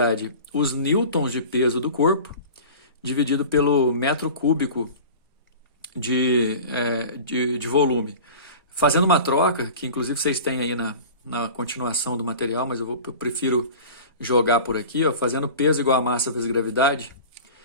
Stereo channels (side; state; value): both; inverted; correlation -0.38